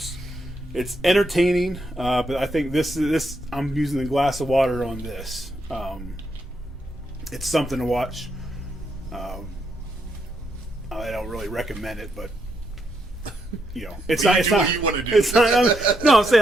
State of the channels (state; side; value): normal; both; correlation 0.79